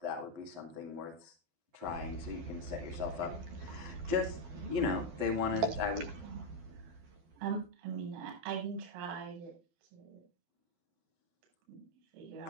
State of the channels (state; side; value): late; left; 12 ms